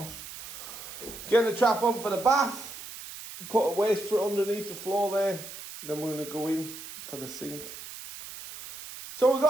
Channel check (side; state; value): right; noise; hiss, 12 dB below the sound